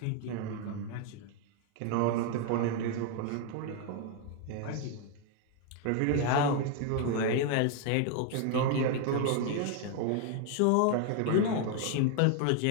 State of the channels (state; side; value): different; both; correlation 0.01